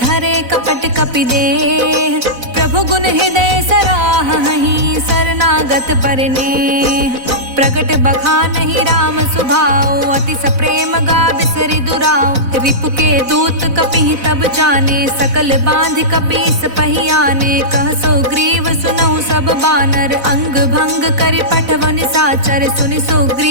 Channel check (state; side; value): late; left; 4.0 ms